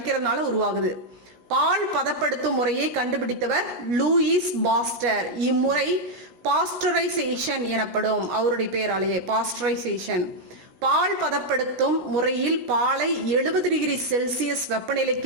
உருவாகுது. பால் பதப்படுத்தும் முறையை கண்டுபிடித்தவர் லூயிஸ் பாஸ்டர். இம்முறை பாஸ்டரைசேஷன் எனப்படும். அவருடைய பெயராலேயே பாஸ்டரைசேஷன். பால் பதப்படுத்தும் முறையில் பாலை 70 டிகிரி செல்சியஸ்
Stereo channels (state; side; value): late; left; 17 ms